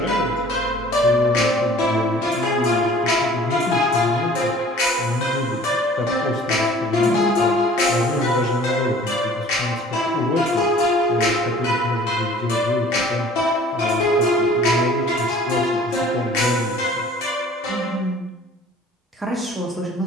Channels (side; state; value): both; normal; correlation 0.50